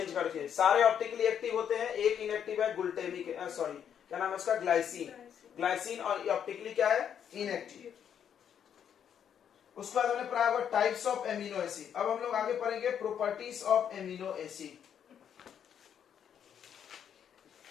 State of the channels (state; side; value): quieter; right; 8.6 dB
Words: करके। सारे ऑप्टिकली एक्टिव होते हैं, एक इनएक्टिव है ग्लूटेमिक, सॉरी क्या नाम है उसका? ग्लाइसिन। ग्लाइसिन और ऑप्टिकली क्या है? इनएक्टिव। उसके बाद हमने पढ़ा होगा टाइप्स ऑफ एमिनो एसिड। अब हम लोग आगे पढ़ेंगे properties of amino acid.